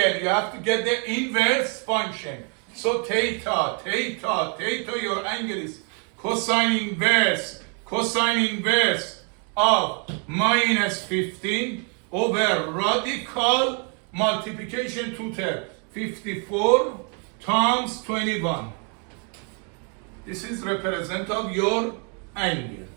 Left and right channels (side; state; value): left; quieter; 38.8 dB